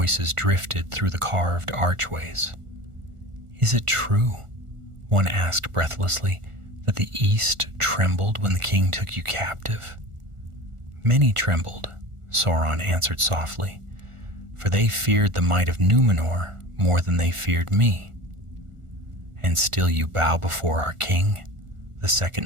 drifted through the carved archways. "Is it true," one asked breathlessly, "that the East trembled when the king took you captive?" "Many trembled," Sauron answered softly, "for they feared the might of Numenor more than they feared me." "And still you bow before our king?" the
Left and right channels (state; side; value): late; left; 1.4 ms